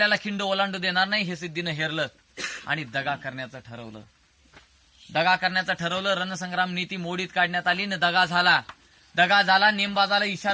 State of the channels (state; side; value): identical; both; correlation 1.00